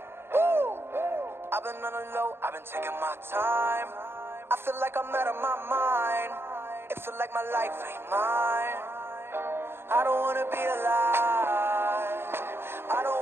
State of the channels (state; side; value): late; left; 0.11 ms